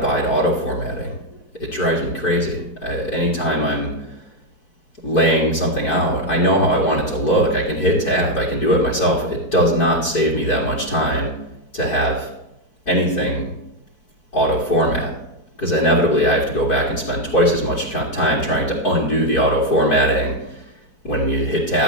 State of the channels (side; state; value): right; late; 4.6 ms